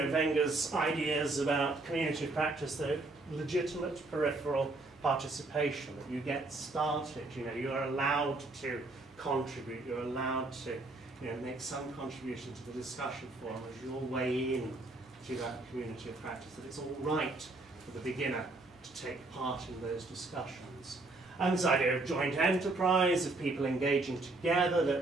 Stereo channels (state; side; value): quieter; left; 3.1 dB